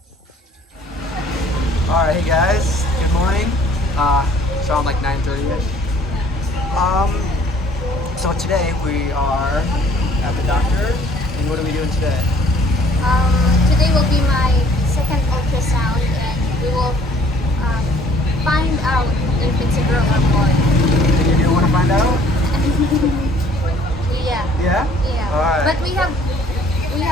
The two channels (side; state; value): both; normal; correlation 0.57